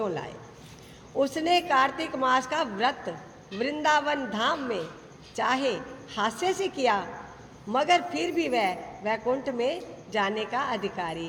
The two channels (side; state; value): both; identical; correlation 1.00